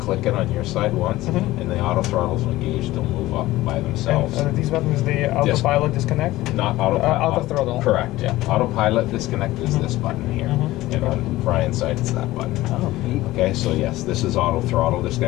click it on your side once, and the auto throttles will engage. They'll move up by themselves. And these buttons, the autopilot disconnect? Not autopilot. Auto throttle. Correct. Yeah. Autopilot disconnect is this button here, and on Brian's side it's that button. Oh, neat. Okay, so yes, this is auto throttle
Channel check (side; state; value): right; quieter; 17.2 dB